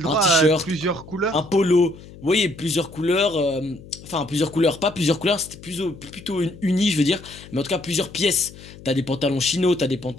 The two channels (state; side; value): noise; left; hum, 18 dB below the sound